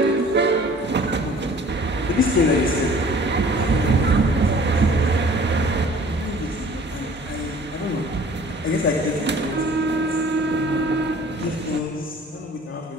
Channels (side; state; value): both; normal; correlation 0.50